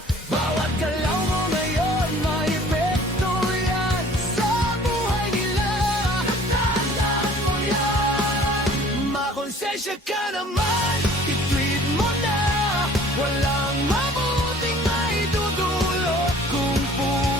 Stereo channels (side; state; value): both; normal; correlation 0.51